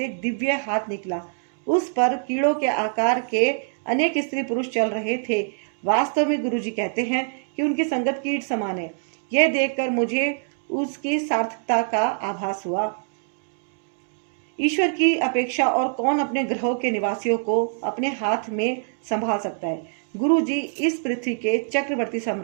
एक दिव्य हाथ निकला। उस पर कीड़ों के आकार के अनेक स्त्री पुरुष चल रहे थे। वास्तव में गुरुजी कहते हैं कि उनकी संगत कीट समान है। यह देखकर मुझे उसकी सार्थकता का आभास हुआ। ईश्वर की अपेक्षा और कौन अपने ग्रहों के निवासियों को अपने हाथ में संभाल सकता है। गुरुजी इस पृथ्वी के चक्रवर्ती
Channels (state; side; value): silent; left; 62 dB below the other